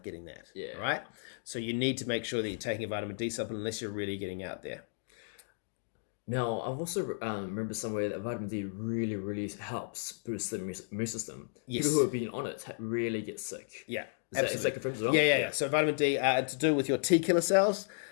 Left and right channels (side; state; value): right; silent; digital silence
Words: getting that, right? So you need to make sure that you're taking a vitamin D supplement unless you're really getting out there. Now, I've also remember somewhere that vitamin D really, really helps boost the immune system. Yes. People who have been on it really get sick. Yeah, Is that confirmed as well? Yeah. So vitamin D, to do with your T killer cells,